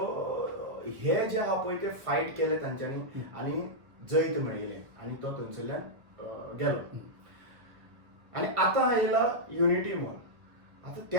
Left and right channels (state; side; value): late; left; 1.2 ms